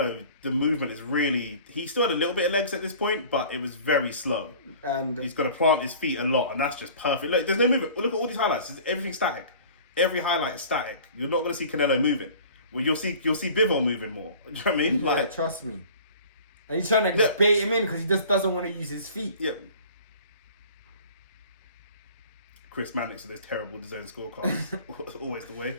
the movement is really. He still had a little bit of legs at this point, but it was very slow. And he's got to plant his feet a lot, and that's just perfect. Look, there's no movement. Look at all these highlights. Everything's static. Every highlight is static. You're not going to see Canelo moving. Well, you'll see Bivol moving more. Do you know what I mean? Yeah, like, trust me. And he's trying to bait him in because he just doesn't want to use his feet. Yeah. Chris Mannix with those terrible design scorecards. Always the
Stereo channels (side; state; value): both; inverted; correlation -0.46